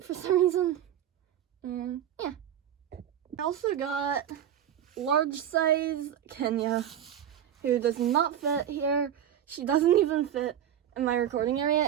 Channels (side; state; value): left; quieter; 10.3 dB